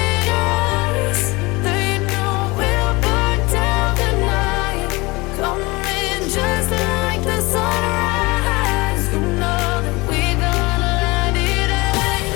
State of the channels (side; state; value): right; quieter; 23.6 dB